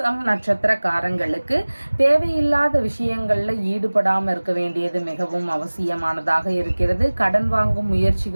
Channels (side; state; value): both; inverted; correlation -1.00